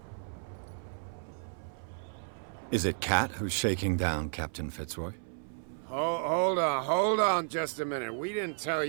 Is it Cat who's shaking down Captain Fitzroy? Hold on just a minute. We didn't tell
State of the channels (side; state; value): left; silent; 56 dB below the other